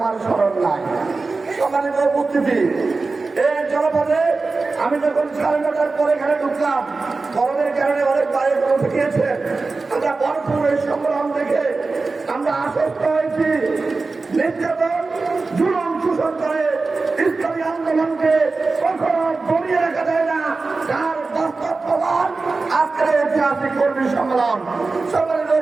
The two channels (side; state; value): left; quieter; 3.9 dB